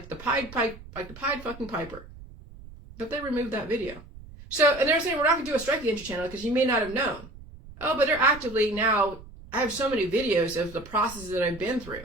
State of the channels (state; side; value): noise; right; rumble, 17 dB below the sound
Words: Pied fucking Piper. But they removed that video. So, and they're saying we're not going to do a strike against your channel because you may not have known. Oh, but they're actively now, I have so many videos of the processes that I've been through.